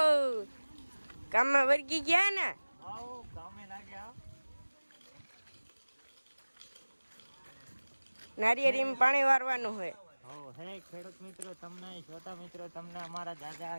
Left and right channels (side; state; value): both; inverted; correlation -1.00